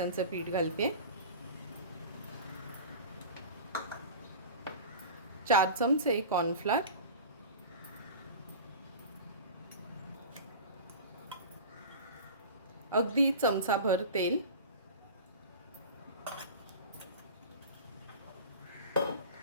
पीठ घालते. 4 चमचे कॉर्नफ्लॉर, अगदी चमचाभर तेल,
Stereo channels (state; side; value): inverted; both; correlation -0.35